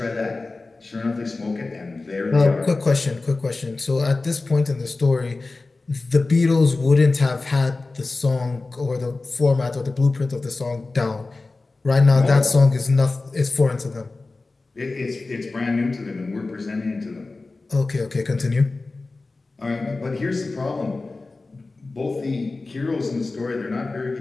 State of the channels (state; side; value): quieter; right; 3.5 dB